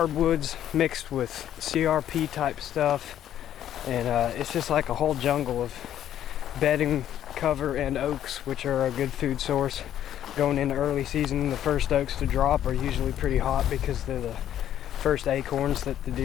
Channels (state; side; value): quieter; right; 11.1 dB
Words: mixed with CRP type stuff, and it's just like a whole jungle of bedding cover and oaks, which are a good food source going into early season. The first oaks to drop are usually pretty hot because they're the first acorns that the